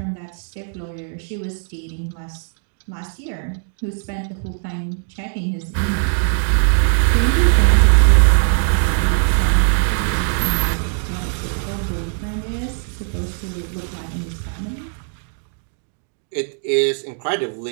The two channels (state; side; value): silent; left; 57 dB below the other